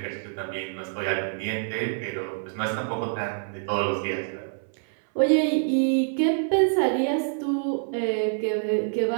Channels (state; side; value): silent; left; 61 dB below the other